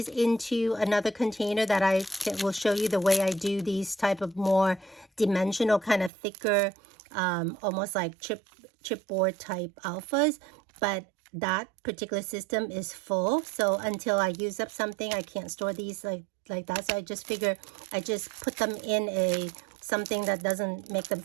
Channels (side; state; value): left; drops out; at 6.1 s